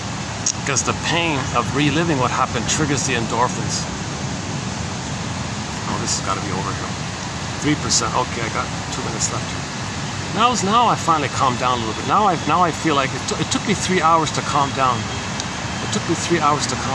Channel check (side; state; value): both; identical; correlation 1.00